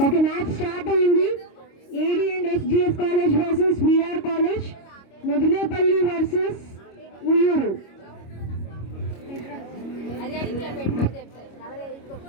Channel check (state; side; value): late; right; 25 ms